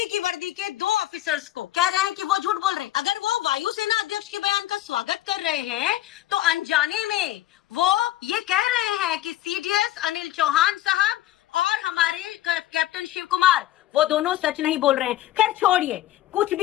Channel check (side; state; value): right; quieter; 14.1 dB